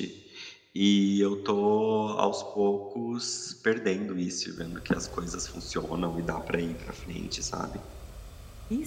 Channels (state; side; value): identical; both; correlation 1.00